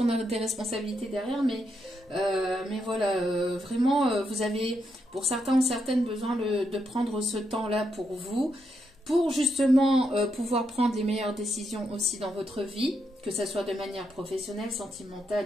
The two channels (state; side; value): normal; both; correlation 0.81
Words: a des responsabilités derrière, mais voilà, vraiment, vous avez, pour certains ou certaines, besoin de prendre ce temps-là pour vous, pour justement pouvoir prendre les meilleures décisions aussi dans votre vie, que ce soit de manière professionnelle, sentimentale,